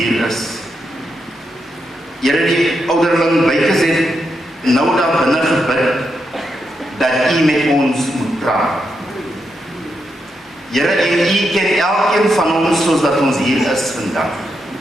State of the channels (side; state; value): both; normal; correlation 0.84